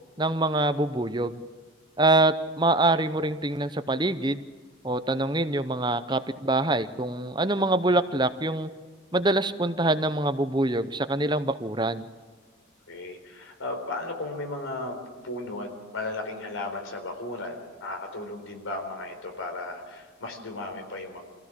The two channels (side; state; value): both; normal; correlation 0.38